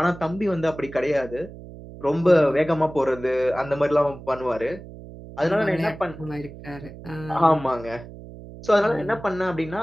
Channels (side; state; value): right; noise; hum, 15 dB below the sound